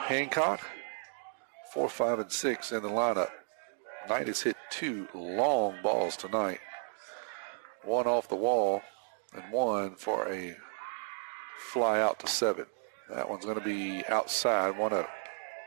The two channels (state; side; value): silent; left; digital silence